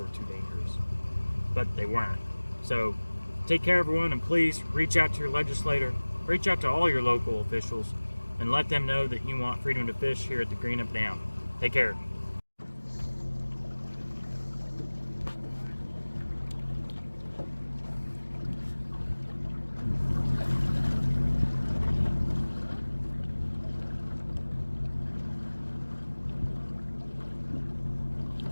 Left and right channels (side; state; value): both; inverted; correlation -1.00